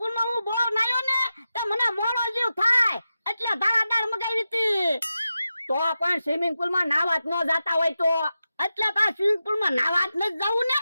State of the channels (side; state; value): both; inverted; correlation -0.91